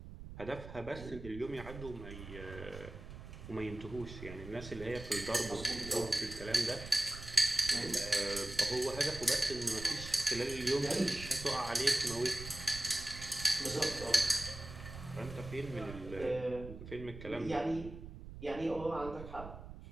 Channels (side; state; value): right; noise; rumble, 12 dB below the sound